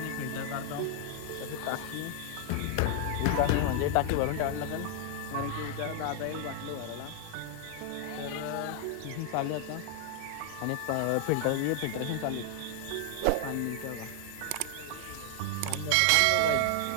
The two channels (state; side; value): different; both; correlation 0.00